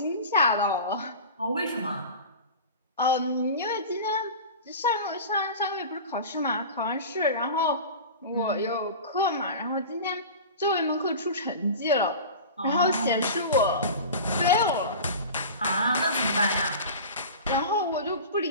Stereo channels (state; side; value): inverted; both; correlation -0.33